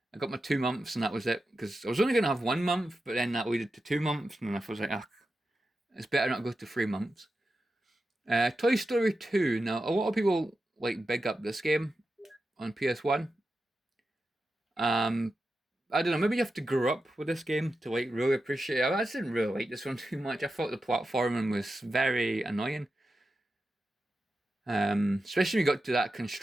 got my 2 months and that was it because I was only going to have 1 month, but then that leaded to 2 months, and then I was like, ah, it's better not go to 3 months. Toy Story 2. Now, a lot of people like big up this game on PS1. Um, I don't know. Maybe you have to grow up with this game to like really appreciate it. I just didn't really like this one too much. I thought the platforming was very annoying. Especially when you got to that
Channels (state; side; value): normal; both; correlation 0.90